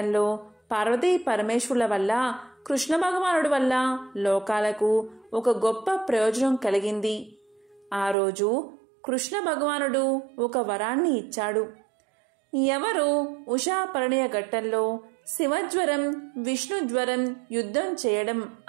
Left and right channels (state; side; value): drops out; left; at 8.2 s